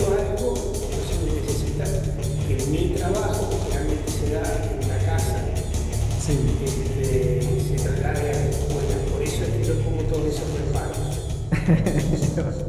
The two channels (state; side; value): identical; both; correlation 1.00